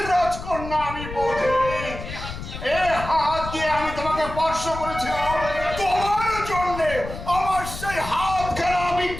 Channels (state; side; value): noise; left; rumble, 10 dB below the sound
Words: রাজকন্যা, আমি বধির। এ হাত দিয়ে আমি তোমাকে স্পর্শ করেছিলাম তোমার জন্য। আমার সেই হাত খেলা আমি